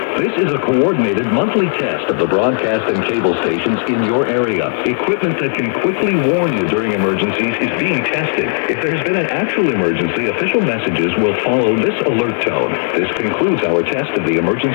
This is a coordinated monthly test of the broadcast and cable stations in your area. Equipment that can quickly warn you during emergencies is being tested. If there's been an actual emergency, official messages will follow this alert tone. This concludes our test of the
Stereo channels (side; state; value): right; silent; 69 dB below the other